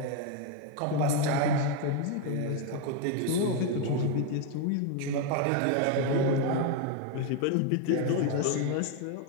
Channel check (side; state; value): both; different; correlation 0.01